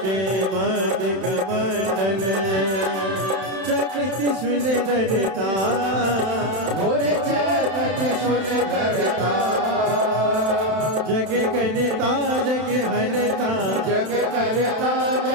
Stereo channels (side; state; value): left; late; 31 ms